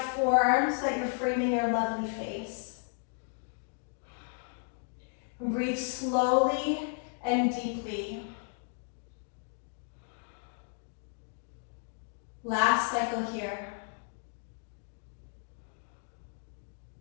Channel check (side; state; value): right; silent; 55 dB below the other